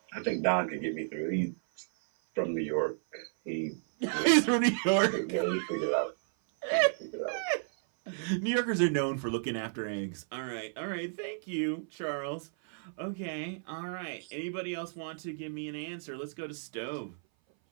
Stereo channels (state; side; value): silent; left; 56 dB below the other